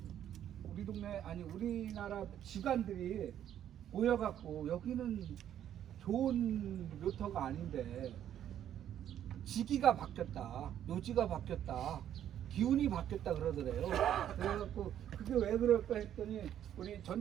우리 동네 우리나라 기관들이 모여갖고 여기는 좋은 묘터가 아닌데 지기가 바뀌었다, 묘지가 바뀌었다, 기운이 바뀌었다 그러더래요. 그래갖고 그게 왜 그럴까 했더니 우리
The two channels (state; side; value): quieter; left; 10.5 dB